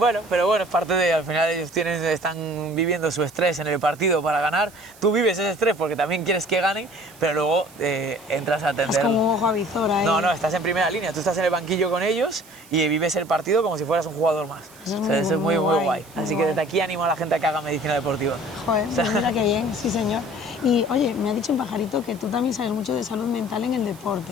pero bueno, es parte de, al final ellos están viviendo su estrés en el partido para ganar. Tú vives ese estrés porque también quieres que ganen, pero luego entras a atender. Es como un ojo a visor ahí. No, estás en primera línea, tú estás en el banquillo con ellos y vives el partido como si fueras un jugador más. Eso es muy guay. muy Así que guay. desde aquí animo a la gente a que haga medicina deportiva. Joder, pues mira qué bien, sí señor. Y oye, me ha dicho un pajarito que tú también sabes mucho de salud mental en el deporte.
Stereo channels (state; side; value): noise; right; hiss, 23 dB below the sound